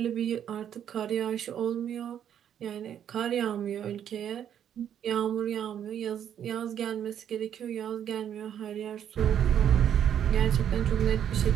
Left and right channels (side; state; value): left; quieter; 9.5 dB